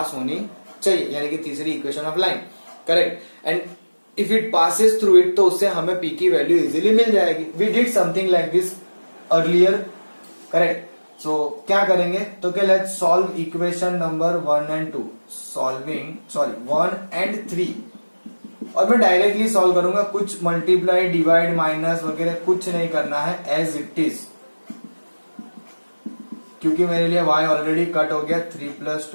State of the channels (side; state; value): both; inverted; correlation -1.00